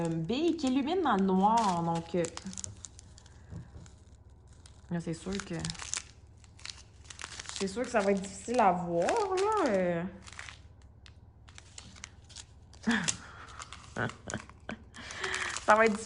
billes qui illuminent dans le noir. Donc... là, c'est sûr que ça va être difficile à voir, là. Ça va être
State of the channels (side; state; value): both; identical; correlation 1.00